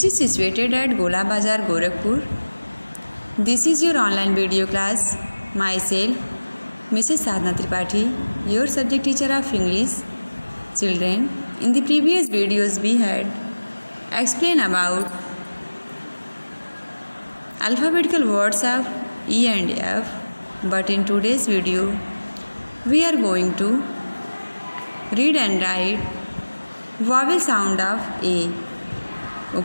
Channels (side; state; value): both; inverted; correlation -1.00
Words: is situated at Gola Bazar, Gorakhpur. This is your online video class. Myself, Mrs. Sadhna Tripathi, your subject teacher of English. Children, in the previous videos we had explained about alphabetical words of E and F. But in today's video, we are going to read and write vowel sound of A.